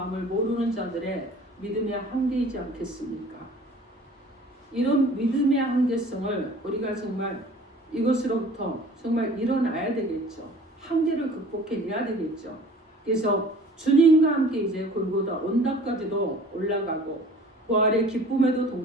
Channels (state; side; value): normal; both; correlation 0.47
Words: 모르는 자들의 믿음의 한계이지 않겠습니까? 이런 믿음의 한계성을 우리가 정말 이것으로부터 정말 일어나야 되겠죠. 한계를 극복해내야 되겠죠. 그래서 주님과 함께 이제 골고다 언덕까지도 올라가고 부활의 기쁨에도